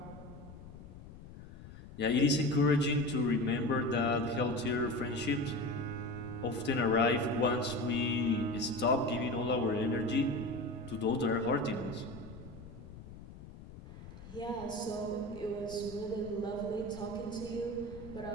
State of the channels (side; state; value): left; noise; rumble, 15 dB below the sound